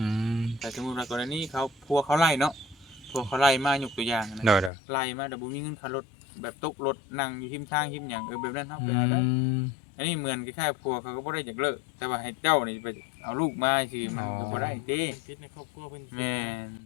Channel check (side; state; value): right; drops out; at 4.7 s